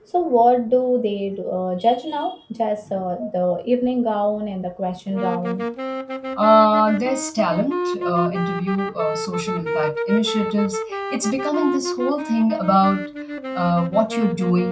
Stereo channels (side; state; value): both; identical; correlation 1.00